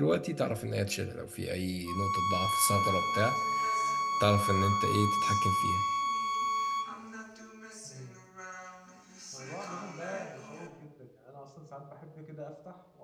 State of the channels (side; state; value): both; identical; correlation 1.00